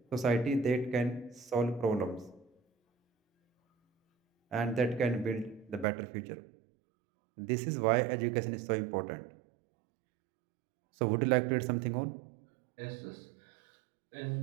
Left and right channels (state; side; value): drops out; left; at 5.9 s